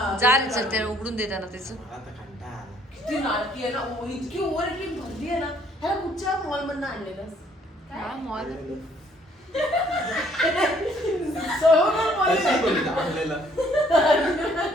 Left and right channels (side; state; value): both; normal; correlation 0.63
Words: जा रे चल त्याला उघडून देताना त्याचं. मला तर कंटाळा आला. किती नाटकी आहे ना. इतकी ओव्हर ऍक्टिंग भरली आहे ना. ह्याला कुठच्या मॉल मधनं आणलेलं हा, मॉल. कशी बोलली आपल्याला?